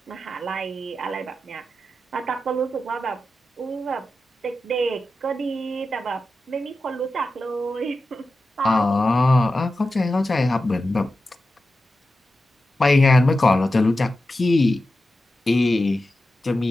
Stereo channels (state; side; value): normal; both; correlation 0.92